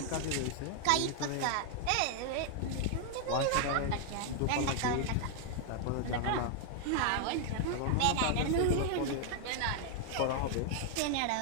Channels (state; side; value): different; both; correlation 0.00